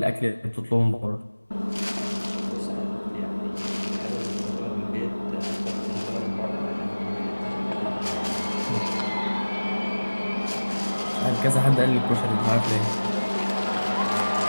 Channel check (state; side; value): inverted; both; correlation -1.00